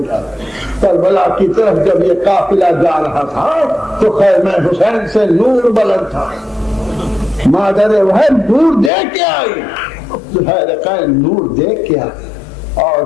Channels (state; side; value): drops out; right; at 8.9 s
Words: کیا ہے۔ کربلا کی طرف جب یہ قافلہ جا رہا تھا تو خیمہ حسین سے نور بلند تھا، مادر وحش نور دیکھ کے آئی، زبیر حسین نور دیکھ کے آئی۔ اور